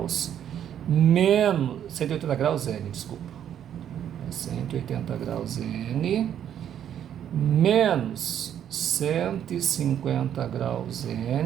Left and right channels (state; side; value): quieter; left; 9.8 dB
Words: menos 180 graus N, desculpa. 180 graus N menos 150 graus